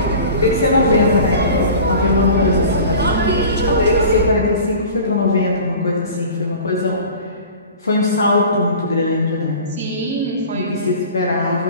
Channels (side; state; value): both; inverted; correlation -0.40